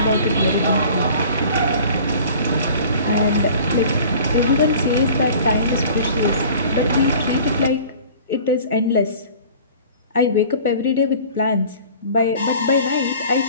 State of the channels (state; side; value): inverted; both; correlation -0.46